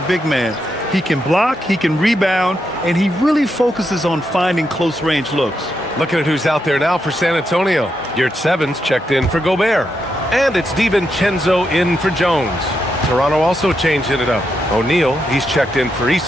big man. He can block, he can rebound, and he really focuses on finding close-range looks. Looking at who's out there now for San Antonio. Yurtseven's checked in for Gobert. And it's DiVincenzo in for Jones. Toronto also changing it up. O'Neal, he's checked in for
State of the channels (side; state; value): both; normal; correlation 0.83